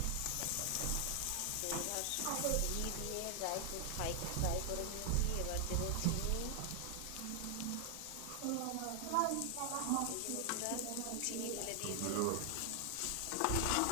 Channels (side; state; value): both; different; correlation 0.00